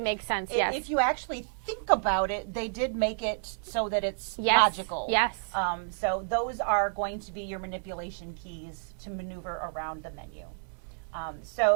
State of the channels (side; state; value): left; silent; digital silence